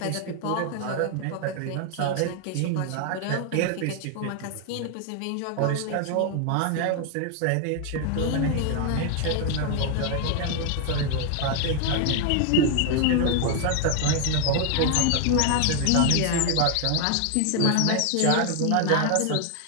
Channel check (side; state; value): both; different; correlation 0.00